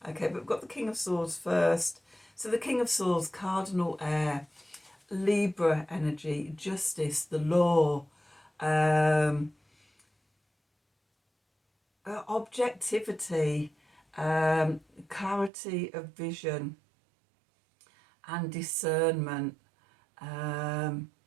Okay, but we've got the King of Swords first. So the King of Swords, cardinal air, Libra energy, justice, the law, objectivity, clarity of vision and discernment.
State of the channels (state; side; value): drops out; left; at 15.5 s